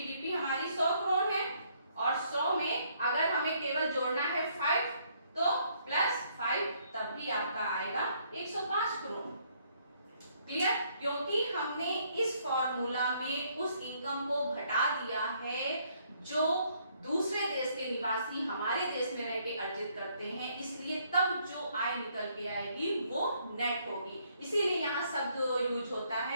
हमारी 100 करोड़ है और 100 में अगर हमें केवल जोड़ना है 5 तो प्लस 5 तब भी आपका आएगा 105 करोड़। क्लियर। क्योंकि हमने इस फॉर्मूला में उस इनकम को घटा दिया है जो दूसरे देश के निवासी हमारे देश में रह के अर्जित करते हैं, इसलिए तब जो आय निकल के आएगी वो नेट होगी। इसीलिए यहाँ शब्द यूज होता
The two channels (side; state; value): both; inverted; correlation -0.68